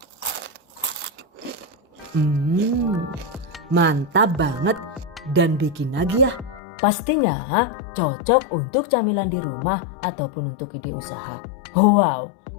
Mantap banget dan bikin lagi ya. Pastinya cocok untuk camilan di rumah ataupun untuk ide usaha. Wow,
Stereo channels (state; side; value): drops out; right; at 6.6 s